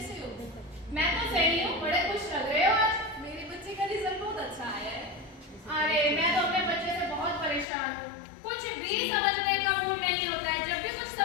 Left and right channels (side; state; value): right; drops out; at 7.7 s